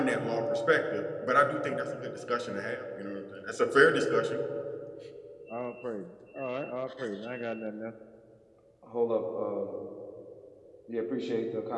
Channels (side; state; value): both; identical; correlation 1.00